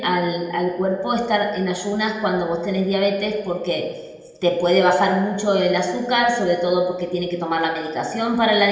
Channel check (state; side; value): identical; both; correlation 1.00